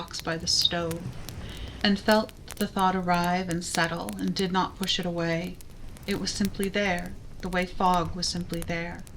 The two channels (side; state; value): both; identical; correlation 1.00